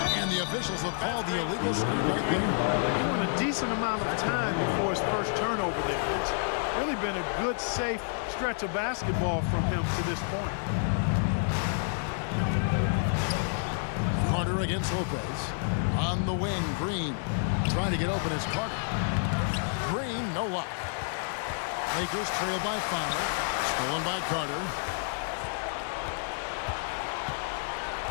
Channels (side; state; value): right; silent; digital silence